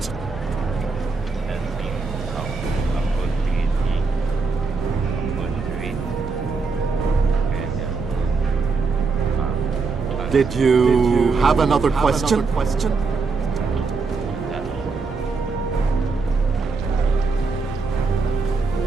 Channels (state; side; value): quieter; left; 4.4 dB